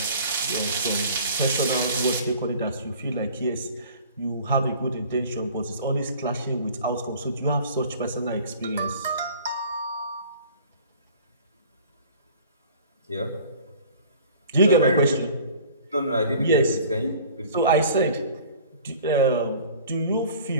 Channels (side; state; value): both; inverted; correlation -0.47